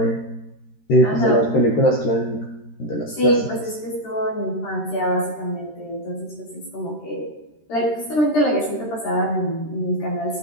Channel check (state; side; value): late; right; 13 ms